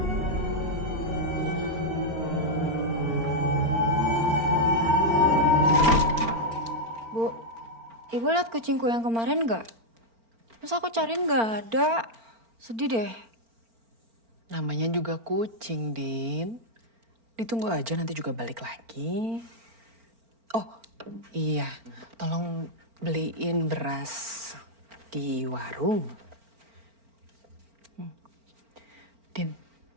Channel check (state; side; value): late; left; 4.4 ms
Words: Bu, ibu lihat kucingku yang kemarin nggak? Terus aku cariin nggak ada. Sedih deh. Namanya juga kucing, Din. Ditunggu aja nanti juga balik lagi. Oh, iya. Tolong beliin beras di warung. Din,